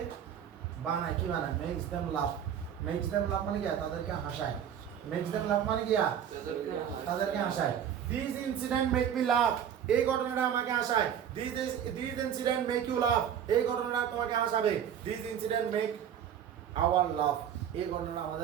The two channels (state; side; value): quieter; left; 9.1 dB